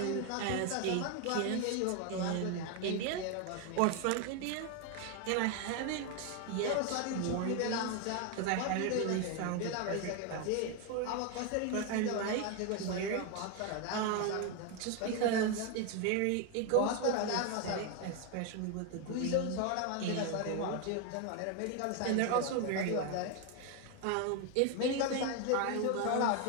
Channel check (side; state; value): both; different; correlation 0.01